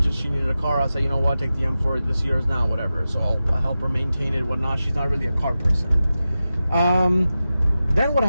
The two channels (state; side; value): inverted; both; correlation -0.93